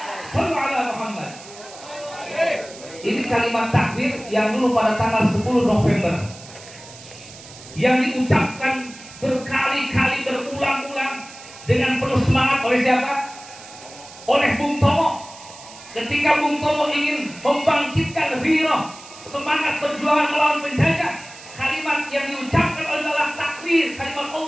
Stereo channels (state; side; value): noise; right; hiss, 18 dB below the sound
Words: Sallu ala Muhammad. Ini kalimat takbir yang dulu pada tanggal 10 November yang diucapkan berkali-kali berulang-ulang dengan penuh semangat oleh siapa? Oleh Bung Tomo. Ketika Bung Tomo ingin membangkitkan ghirah, semangat perjuangan melawan penjajah, kalimat yang diucapkan adalah takbir, kalimat